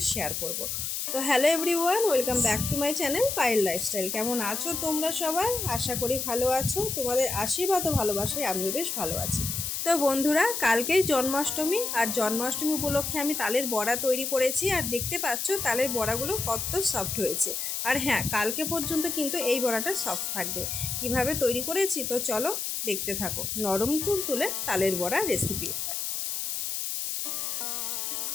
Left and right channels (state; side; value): noise; left; hiss, 3 dB below the sound